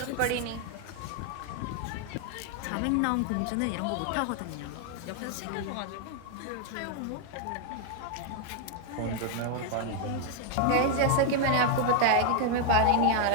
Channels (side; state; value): both; different; correlation 0.01